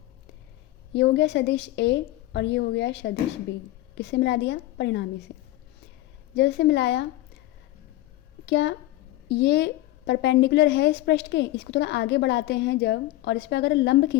ये हो गया सदिश ए और ये हो गया सदिश बी। किससे मिला दिया? परिणामी से। जैसे मिलाया, क्या ये परपेंडिकुलर है इस पृष्ठ के? इसको थोड़ा आगे बढ़ाते हैं जब, और इस पर अगर लंब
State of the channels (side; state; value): right; quieter; 16.5 dB